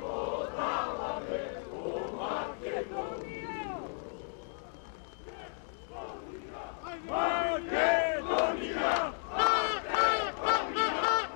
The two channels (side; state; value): right; silent; 55 dB below the other